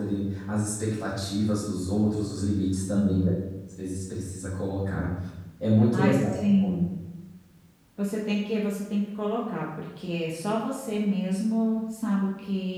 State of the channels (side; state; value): both; identical; correlation 1.00